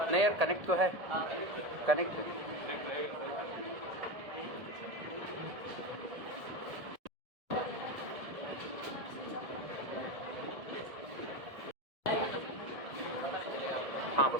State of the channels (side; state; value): left; late; 1.7 ms